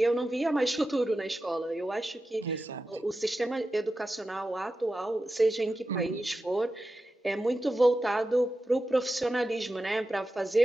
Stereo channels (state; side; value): normal; both; correlation 0.92